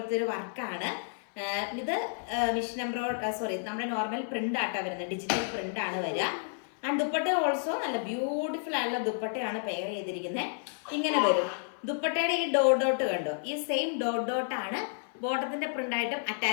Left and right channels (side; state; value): right; silent; 57 dB below the other